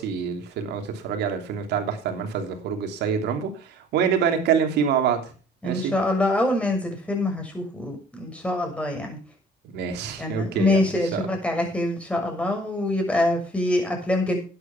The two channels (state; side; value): normal; both; correlation 0.52